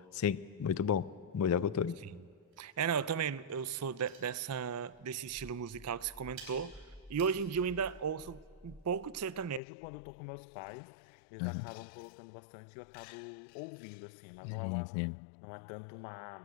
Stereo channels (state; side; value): drops out; right; at 9.6 s